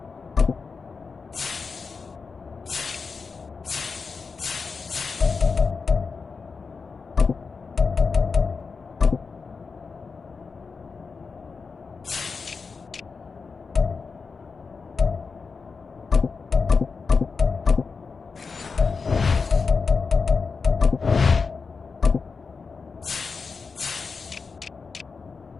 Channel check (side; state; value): right; quieter; 4.9 dB